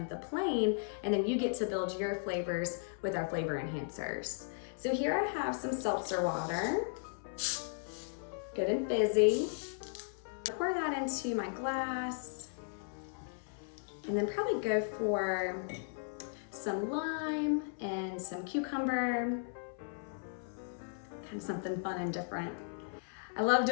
of the plain, and then you get to build your flavors with our flavor enhancers. So here I have some seltzer water, good and fizzy. Pour that into my glass, and then probably go for some lime and some cucumber. kind of something fun and different. I love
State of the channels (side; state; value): right; silent; 54 dB below the other